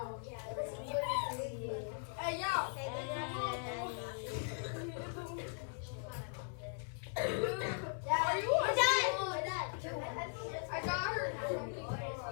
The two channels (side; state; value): right; silent; 52 dB below the other